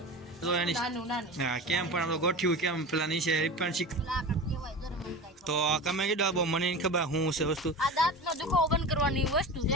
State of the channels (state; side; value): normal; both; correlation 0.31